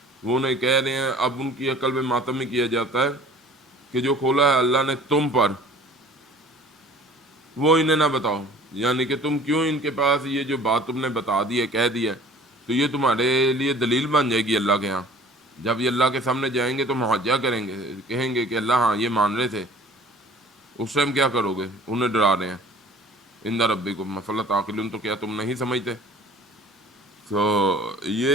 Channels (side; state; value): both; normal; correlation 0.48